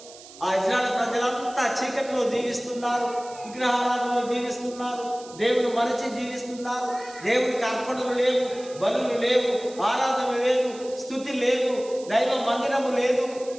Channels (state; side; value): noise; right; hiss, 19 dB below the sound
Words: ఆ ఇజ్రాయేల్ ప్రజలంతా చీకటిలో జీవిస్తున్నారు, విగ్రహారాధనలో జీవిస్తున్నారు, దేవుని మరచి జీవిస్తున్నారు. దేవునికి అర్పణలు లేవు, బలులు లేవు, ఆరాధన లేదు, స్తుతి లేదు, దైవ మందిరము లేదు.